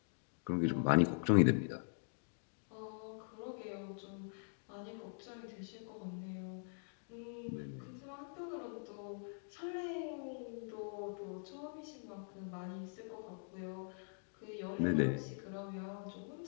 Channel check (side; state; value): right; silent; digital silence